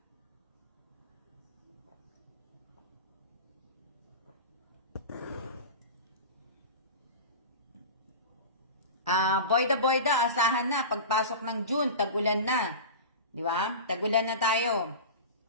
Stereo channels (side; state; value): both; inverted; correlation -0.30